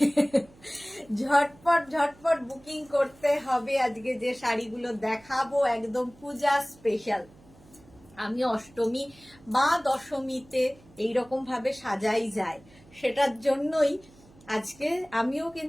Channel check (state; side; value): noise; right; hum, 26 dB below the sound